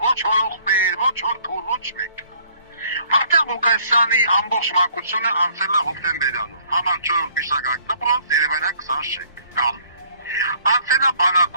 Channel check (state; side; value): inverted; both; correlation -0.59